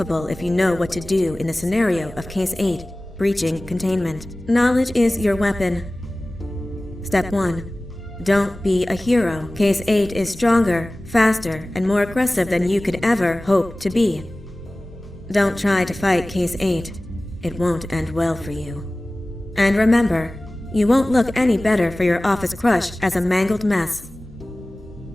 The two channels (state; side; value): normal; both; correlation 0.98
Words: if you know what to do in the scenario of Case 8, breaching containment. Knowledge is your weapon. Step 1. Don't be a hero. Case 8 is stronger, faster, and more aggressive than you could ever hope to be. Don't try to fight Case 8. It won't end well for you. And remember, you won't look any better for your office crush as a mangled mess.